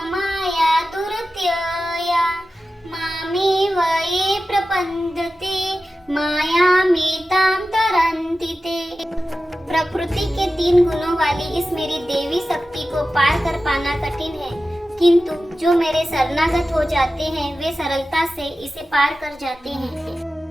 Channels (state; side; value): normal; both; correlation 0.94